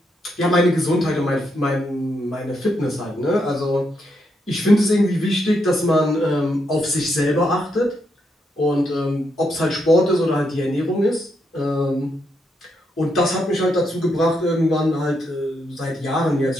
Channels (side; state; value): both; normal; correlation 0.80